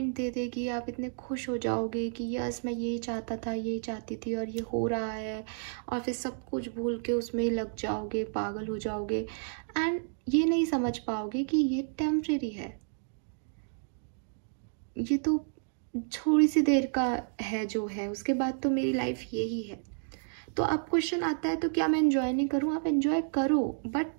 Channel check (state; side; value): silent; left; digital silence